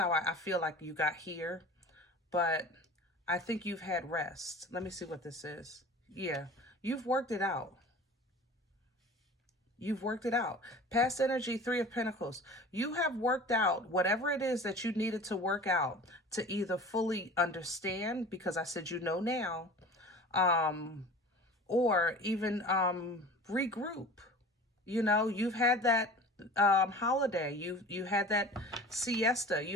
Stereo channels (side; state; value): both; normal; correlation 0.40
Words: I feel like you got here. But I think you've had rest. Let me see what this is. Yeah, you've worked it out. You've worked it out. Past energy, 3 of Pentacles. You have worked out whatever it is that you needed to work out to either fully understand, because I said you know now, or even regroup. You know, you've had that holiday. You had that siesta.